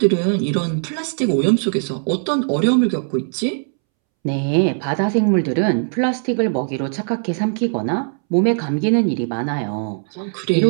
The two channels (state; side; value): silent; left; 66 dB below the other